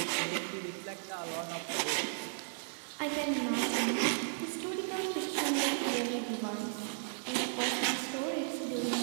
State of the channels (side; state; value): left; silent; 54 dB below the other